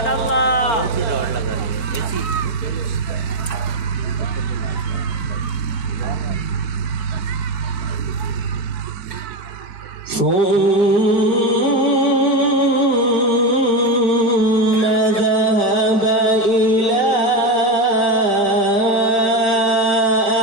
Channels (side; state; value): right; late; 4.8 ms